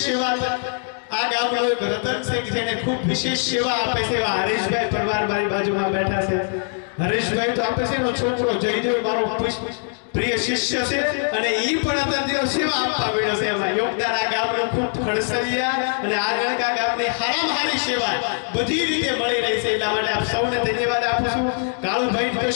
આ ગામનો એક રતન છે કે જેને ખૂબ વિશેષ સેવા આપે છે એવા હરેશભાઈ પરવાર મારી બાજુમાં બેઠા છે હરેશભાઈ તો આપે છે એનો છોકરો જયદેવ મારો પ્રિય શિષ્ય છે અને ઈ પણ અત્યારથી સેવા આપવા મળ્યો છે એમાં યોગદાન આ ગામનું ખૂબ ખડસલિયા અને આ ગણકા ગામની હારામાં હારી સેવા બધી રીતે મળી રહી છે એટલા માટે આપ સૌને ધન્યવાદ આપું છું કાળુભાઈ તો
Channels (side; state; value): right; silent; 56 dB below the other